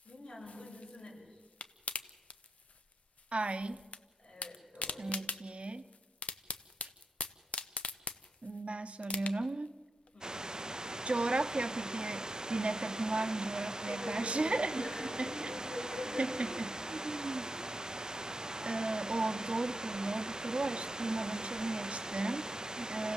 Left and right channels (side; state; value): both; normal; correlation 0.86